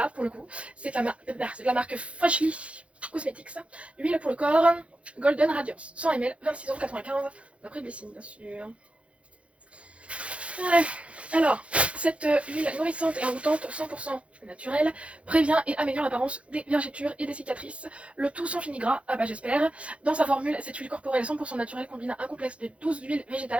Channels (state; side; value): late; left; 0.061 ms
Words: pour le coup. C'est la marque Freshly Cosmetics. Huile pour le corps, Golden Radiance, 100 ml, 26,95€, d'après Blessing, bien sûr. Ouais. Alors, cette huile nourrissante et envoûtante 100% naturelle prévient et améliore l'apparence des vergetures et des cicatrices, le tout sans fini gras, ah bah j'espère. Dans sa formule, cette huile corporelle 100% naturelle combine un complexe de 12 huiles